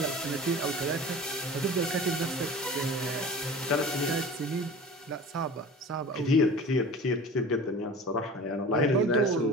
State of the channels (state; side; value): normal; both; correlation 0.38